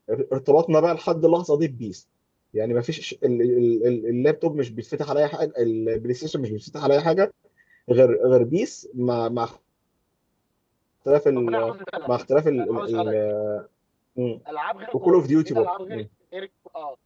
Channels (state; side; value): identical; both; correlation 1.00